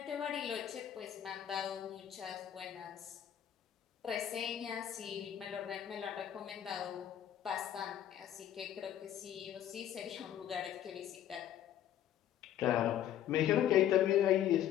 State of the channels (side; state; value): right; quieter; 10.8 dB